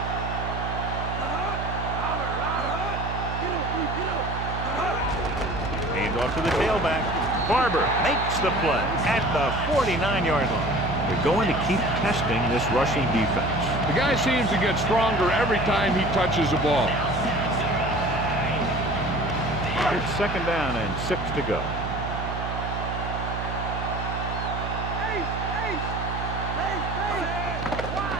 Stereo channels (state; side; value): noise; right; hum, 5 dB below the sound